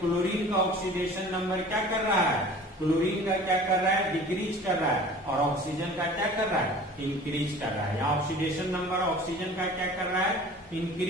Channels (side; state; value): both; normal; correlation 0.44